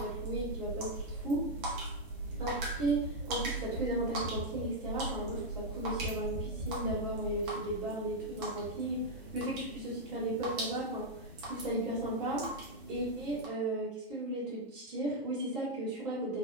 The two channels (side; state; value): both; normal; correlation -0.02